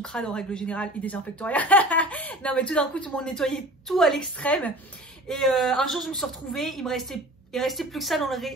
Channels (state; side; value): normal; both; correlation 0.40